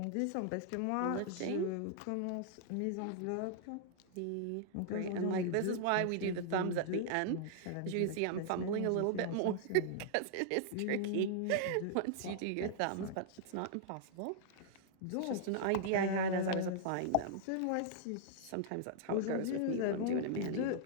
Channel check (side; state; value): both; different; correlation -0.01